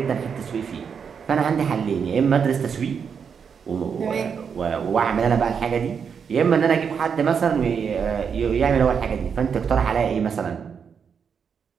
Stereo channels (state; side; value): quieter; left; 6.7 dB